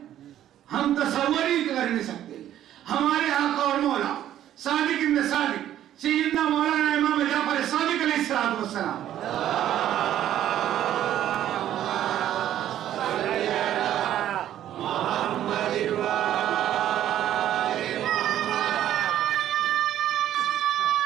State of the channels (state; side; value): quieter; left; 11.8 dB